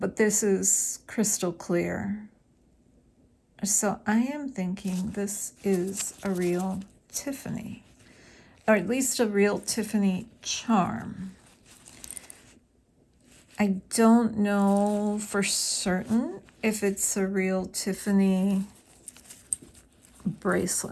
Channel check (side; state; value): both; identical; correlation 1.00